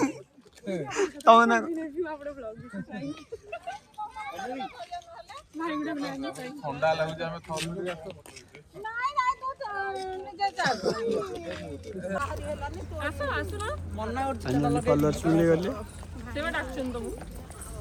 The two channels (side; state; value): both; identical; correlation 1.00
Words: तवना आपड़े ब्लॉग भाई गुडे ब्लॉग ठंडा लागु जे हम थम नाइ नाइ तो निजे जा आसो आसो ना मन्ना और कलर सुनले गले सेवा डाक्शन तुम